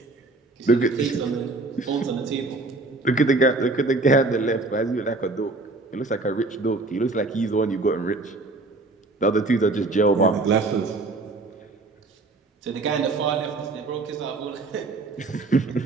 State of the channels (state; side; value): quieter; left; 3.3 dB